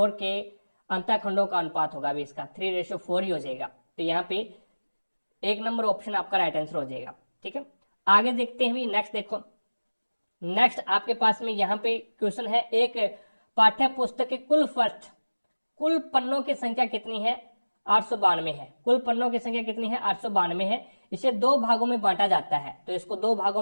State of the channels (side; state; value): both; inverted; correlation -1.00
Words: के अंतःखंडों का अनुपात होगा, अभी इसका 3:4 ही हो जाएगा। तो यहाँ पे 1 नंबर ऑप्शन आपका राइट आंसर हो जाएगा, ठीक है। आगे देखते हैं, नेक्स्ट देखो, नेक्स्ट आपके पास में यहाँ पे क्वेश्चन है, एक पाठ्य पुस्तक के कुल पन्नों की संख्या कितनी है, 892 है, कुल पन्नों की संख्या कितनी है, 892 है। इसे दो भागों में बांटा जाता है, तो इसको दो